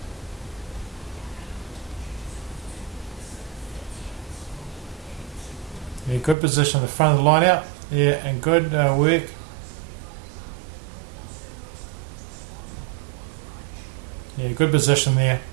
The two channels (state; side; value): drops out; left; at 6.4 s